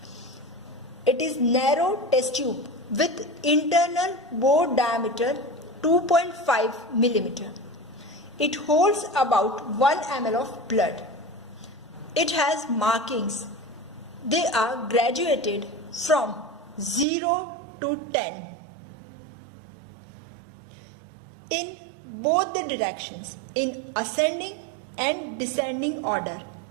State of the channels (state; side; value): drops out; left; at 17.1 s